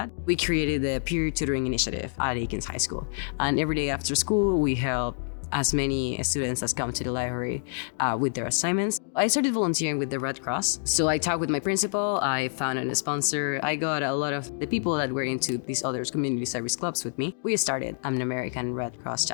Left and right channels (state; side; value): silent; right; digital silence